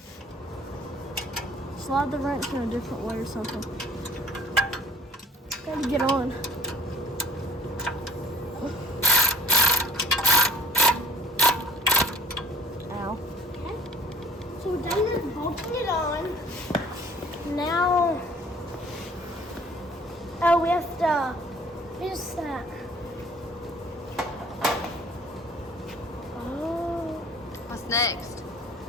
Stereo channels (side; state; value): both; normal; correlation 0.50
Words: Slide the wrench in a different way or something. Gotta get on. Ow. Okay. So we're done with bolting it on. Now, oh, we have to What's that? Oh, What's next?